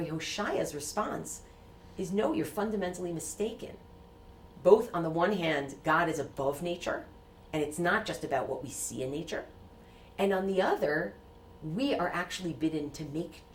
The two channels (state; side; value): identical; both; correlation 1.00